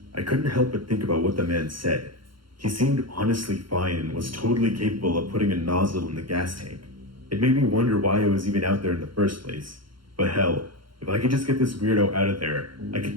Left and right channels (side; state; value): left; late; 0.73 ms